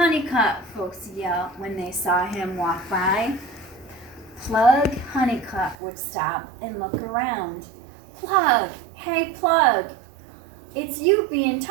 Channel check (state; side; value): drops out; left; at 5.8 s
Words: folks yelled when they saw him walk by. Plug Honeycutt would stop and look around. Plug, hey Plug, it's you being